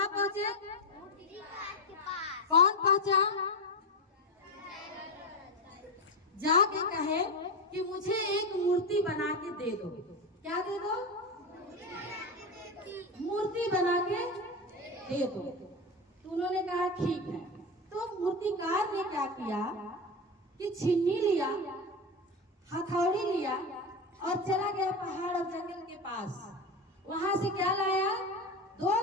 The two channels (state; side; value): normal; both; correlation 0.17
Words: पहुंचे? मूर्तिकार के पास। कौन पहुंचा? जाके कहे कि मुझे एक मूर्ति बना के दे दो। क्या दे दो? मूर्ति बना के दे दो। तो उन्होंने कहा ठीक है। तो मूर्तिकार ने क्या किया कि छीनी लिया, हथौड़ी लिया और चला गया पहाड़ और जंगल के पास। वहां से क्या लाया? 2